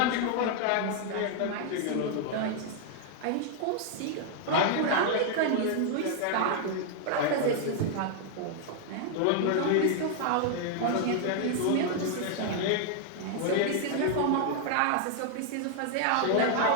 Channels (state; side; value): different; both; correlation 0.00